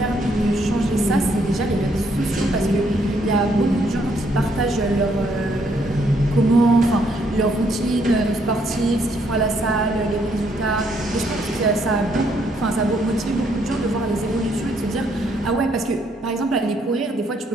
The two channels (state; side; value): normal; both; correlation 0.71